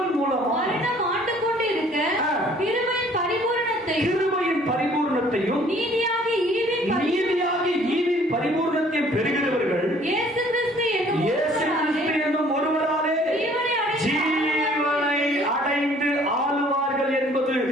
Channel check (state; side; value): normal; both; correlation 0.57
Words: மூலம் மரணம் ஆண்டு கொண்டு இருக்க கிருபையின் பரிபூரணத்தையும் நீதியாகி ஈவின் பரிபூரணத்தையும் பெறுகிறவர்கள் இயேசு கிறிஸ்து என்னும் ஒருவராலே ஜீவனை அடைந்து ஆளுவார்கள் என்பது